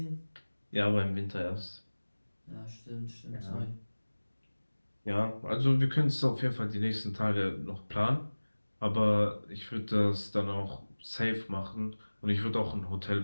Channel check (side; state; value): both; inverted; correlation -1.00